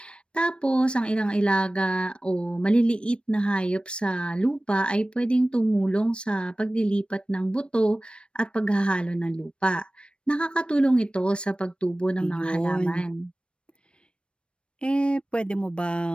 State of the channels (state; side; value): late; right; 0.057 ms